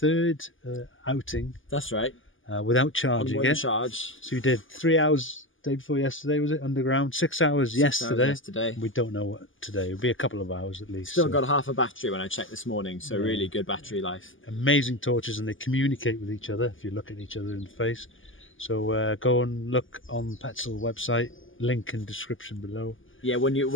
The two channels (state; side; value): late; right; 0.58 ms